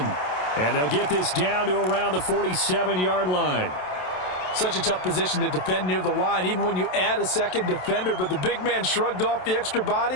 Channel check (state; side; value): late; right; 27 ms